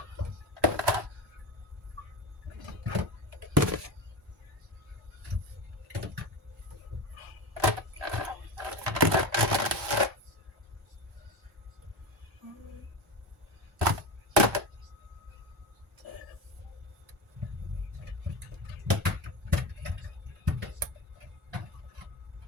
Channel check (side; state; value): both; normal; correlation 0.23